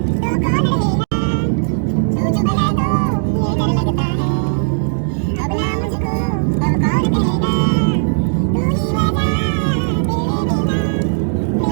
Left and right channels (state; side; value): silent; left; digital silence